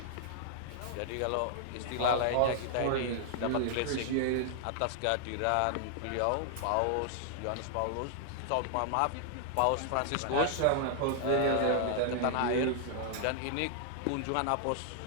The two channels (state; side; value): different; both; correlation -0.01